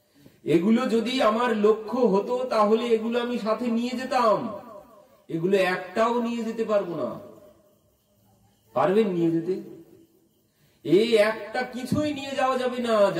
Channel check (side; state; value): both; identical; correlation 1.00